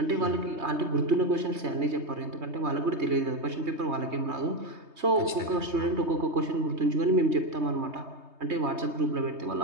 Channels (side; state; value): left; late; 3.2 ms